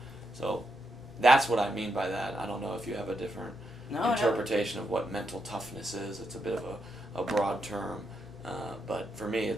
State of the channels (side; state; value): both; normal; correlation 0.82